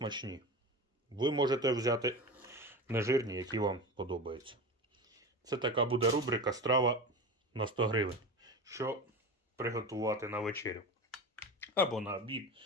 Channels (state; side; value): normal; both; correlation 0.27